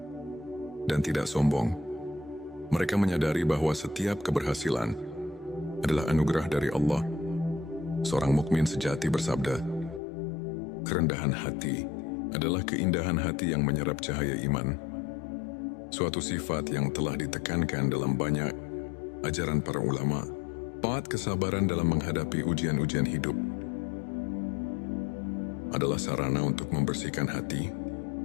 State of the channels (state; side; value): drops out; right; at 10.0 s